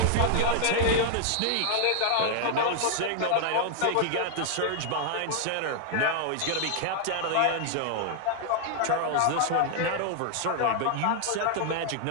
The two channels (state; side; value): different; both; correlation 0.00